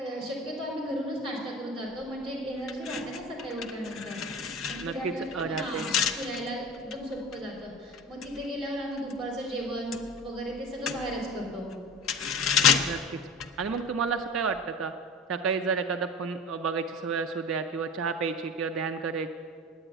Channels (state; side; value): normal; both; correlation 0.34